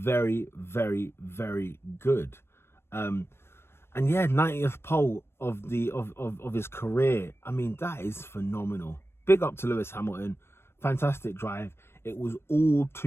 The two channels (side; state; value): right; late; 0.12 ms